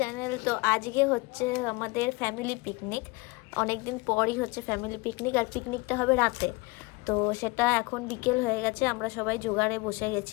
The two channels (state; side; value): quieter; right; 25.4 dB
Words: তো আজকে হচ্ছে আমাদের ফ্যামিলি পিকনিক। অনেকদিন পরই হচ্ছে ফ্যামিলি পিকনিক, আর পিকনিকটা হবে রাতে। তো সেটা এখন বিকেল হয়ে গেছে, আমরা সবাই জোগাড়ে বসে